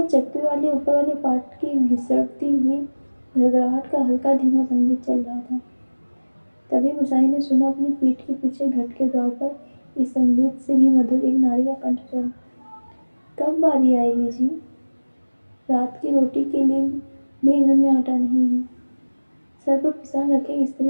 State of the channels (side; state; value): both; inverted; correlation -1.00